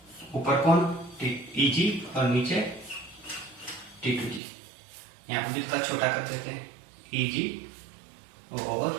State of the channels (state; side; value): drops out; left; at 4.4 s